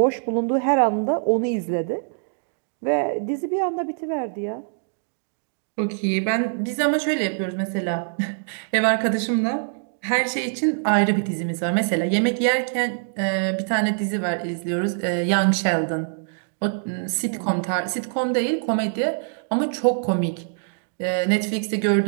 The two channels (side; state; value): left; silent; digital silence